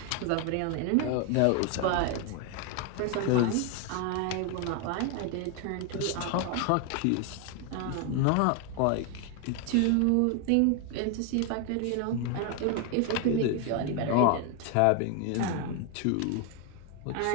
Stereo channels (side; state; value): both; different; correlation 0.01